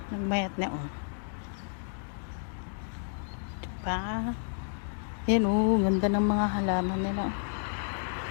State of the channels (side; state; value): right; silent; digital silence